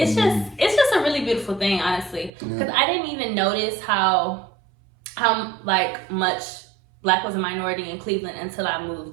just a really beautiful thing, honestly, because I didn't even notice how like much black was a minority in Cleveland until I moved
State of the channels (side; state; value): left; drops out; at 2.3 s